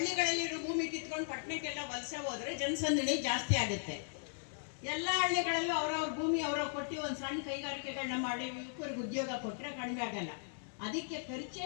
ಭೂಮಿ ಕಿತ್ಕೊಂಡು ಪಟ್ಟಣಕ್ಕೆಲ್ಲ ವಲಸೆ ಹೋದ್ರೆ ಜನಸಂದಣಿ ಜಾಸ್ತಿ ಆಗುತ್ತೆ. ಎಲ್ಲ ಹಳ್ಳಿಗಳಲ್ಲೂ ಅವ್ರವ್ರ ಭೂಮಿ ಅವ್ರವ್ರು ಕೊಟ್ಟು ಒಂದು ಸಣ್ಣ ಕೈಗಾರಿಕೆಗಳನ್ನ ಮಾಡಿ ಯುವಕರಿಗೆ ಉದ್ಯೋಗ ಕೊಟ್ಟರೆ ಕಡಿಮೆ ಆಗಲ್ಲ. ಅದಕ್ಕೆ ಖರ್ಚು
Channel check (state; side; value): silent; right; 53 dB below the other